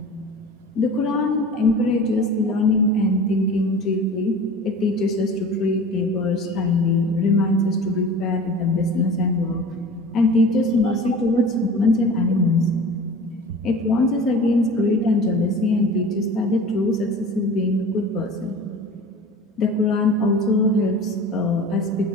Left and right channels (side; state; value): both; normal; correlation 0.39